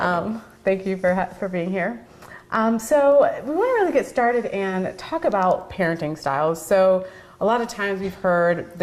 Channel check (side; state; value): both; identical; correlation 1.00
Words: me. Thank you for being here. So we want to really get started and talk about parenting styles. So a lot of times we've heard